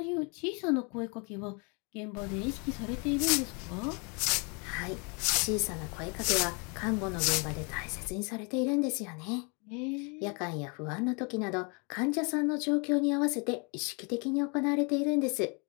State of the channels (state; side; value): quieter; right; 33.3 dB